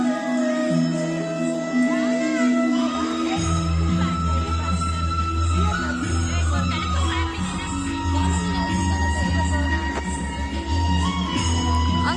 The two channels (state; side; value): identical; both; correlation 1.00